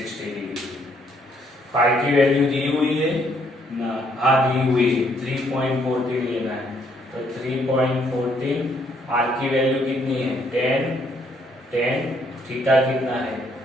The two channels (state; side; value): normal; both; correlation 0.69